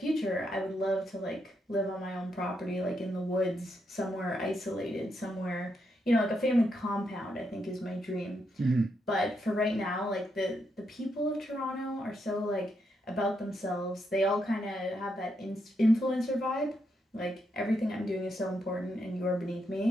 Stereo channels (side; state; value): both; normal; correlation 0.80